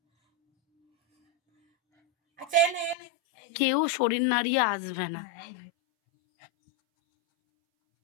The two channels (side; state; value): right; drops out; at 3.0 s